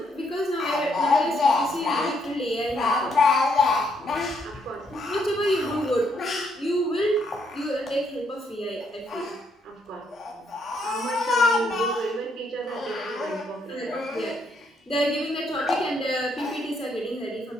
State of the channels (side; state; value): both; normal; correlation 0.73